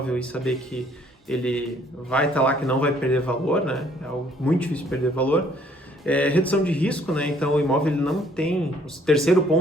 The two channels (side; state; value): both; normal; correlation 0.62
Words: e saber que ele vai estar lá, que não vai perder valor, né? É algo muito difícil de perder valor. Redução de risco, né? Então, o imóvel ele não tem... O terceiro